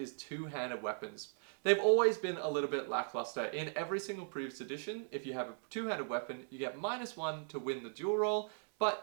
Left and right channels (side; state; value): left; silent; 53 dB below the other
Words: two-handed weapons. They've always been a little bit lackluster. In every single previous edition, if you have a two-handed weapon, you get -1 to win the duel roll, but